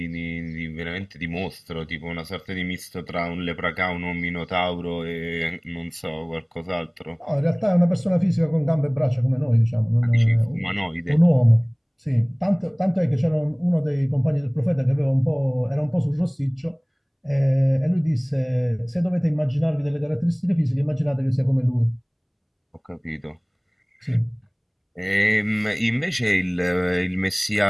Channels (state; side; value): identical; both; correlation 1.00